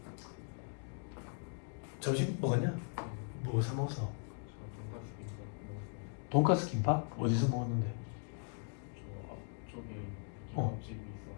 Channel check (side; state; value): right; silent; 52 dB below the other